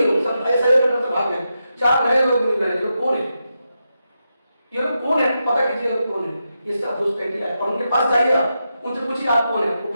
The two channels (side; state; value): both; inverted; correlation -0.87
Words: लोग, सब ऐसे भाग गए। 4 नए लोग मिल रहे हैं। कौन है ये लोग? कौन है? पता कीजिए लोग कौन है। ये सब घुसपैठिया है और उनके पास जाइए, उनसे पूछिए आप कौन है, वो